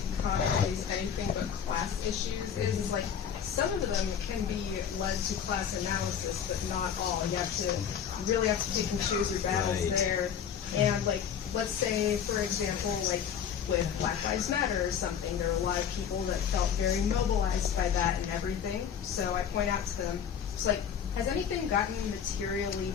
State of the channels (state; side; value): quieter; right; 8.1 dB